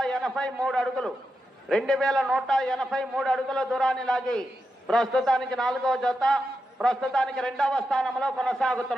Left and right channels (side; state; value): both; normal; correlation 0.87